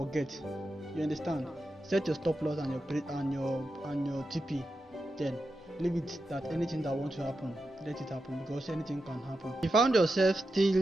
You understand? set your stop loss and your TP. Then leave it that anything that wants to happen, let it happen, because anything can happen. If you found yourself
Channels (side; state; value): both; normal; correlation 0.89